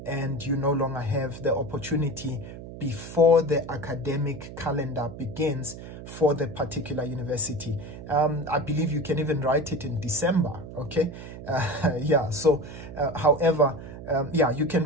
and you no longer have the opportunity before the academic calendar begins for the particular university. I believe you can even write it in December, okay? Yeah, so however, yeah, you can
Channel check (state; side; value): noise; right; hum, 12 dB below the sound